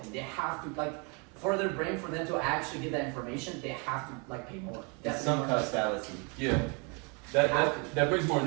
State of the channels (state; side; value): quieter; left; 33.2 dB